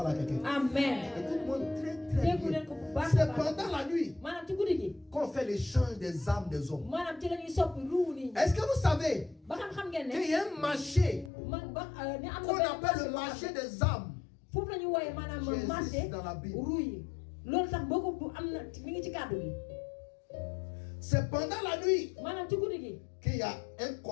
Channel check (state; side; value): drops out; right; at 11.3 s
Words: à quelqu'un? amen Écoute-moi très très déggu bien. leen ko bu baax a C'est baax pendant la nuit maanaam ci guddi gi qu'on fait l'échange des âmes des hommes. maanaam ci la ñuy soppi ruu nit ñi Est-ce que vous savez ba xam ngeen ne qu'il y a un marché ni am qu'on na appelle le marché des âmes foofu la ñuy wooyee maanaam qui marché existe dans la Bible? ruu yi loolu tax boo ko bu am na mi ngi ci kàddu gi C'est pendant la nuit maanaam ci guddi gi qu'il y a un